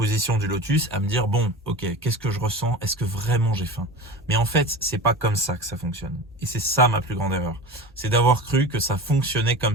du lotus à me dire, bon, ok, qu'est-ce que je ressens? Est-ce que vraiment j'ai faim? Mais en fait, c'est pas comme ça que ça fonctionne. Et c'est ça ma plus grande erreur. C'est d'avoir cru que ça fonctionnait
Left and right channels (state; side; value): normal; both; correlation 0.32